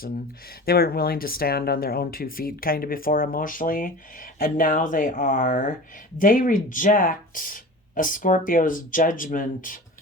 They weren't willing to stand on their own 2 feet kind of before emotionally, and now they are. They reject a Scorpio's judgment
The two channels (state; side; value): normal; both; correlation 0.35